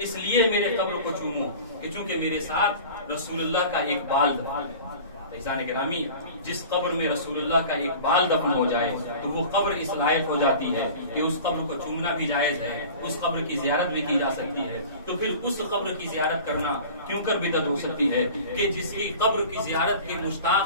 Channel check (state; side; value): inverted; both; correlation -0.40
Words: اس لیے میرے قبر کو چومو کہ چونکہ میرے ساتھ رسول اللہ کا ایک بال دفن ہے. عزیزان گرامی، جس قبر میں رسول اللہ کا ایک بال دفن ہو جائے تو وہ قبر اس لائق ہو جاتی ہے کہ اس قبر کو چومنا بھی جائز ہے، اس قبر کی زیارت بھی کی جا سکتی ہے. تو پھر اس قبر کی زیارت کرنا کیوں کر بدعت ہو سکتی ہے کہ جس کی قبر کی زیارت کے